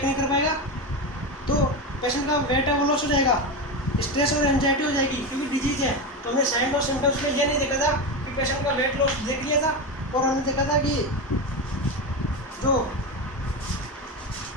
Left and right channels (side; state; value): both; normal; correlation 0.17